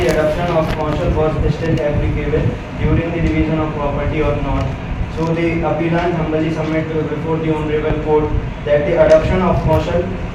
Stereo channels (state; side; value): identical; both; correlation 1.00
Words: adoption of Kaushal was still applicable during the division of property or not. So the appellant humbly submit before the Honorable Court that the adoption of Kaushal